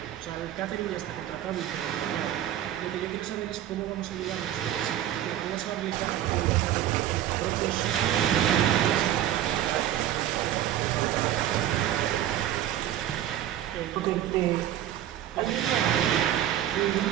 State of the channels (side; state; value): left; quieter; 11.8 dB